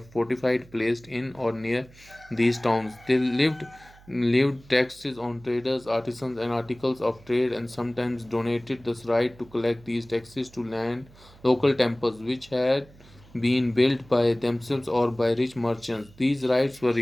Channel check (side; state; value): right; noise; hum, 24 dB below the sound